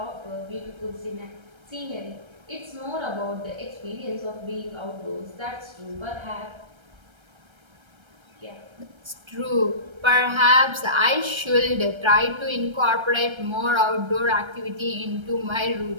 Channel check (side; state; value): left; late; 1.3 ms